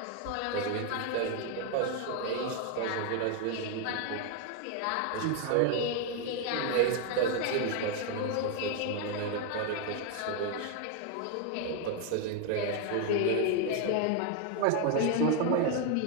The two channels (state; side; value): different; both; correlation 0.01